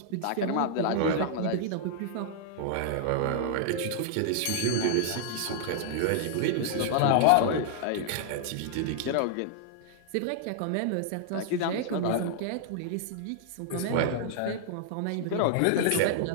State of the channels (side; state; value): both; different; correlation -0.01